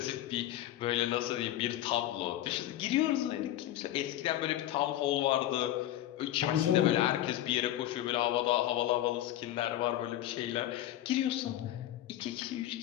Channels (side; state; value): right; quieter; 13.3 dB